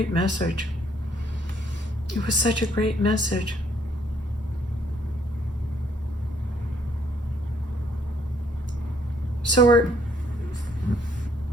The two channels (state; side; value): normal; both; correlation 0.67